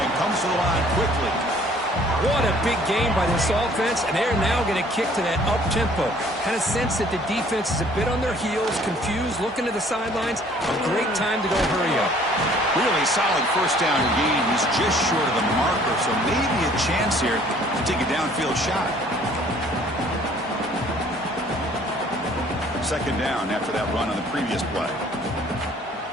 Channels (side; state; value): both; normal; correlation 0.56